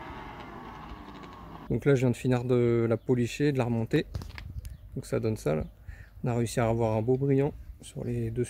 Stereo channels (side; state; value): both; identical; correlation 1.00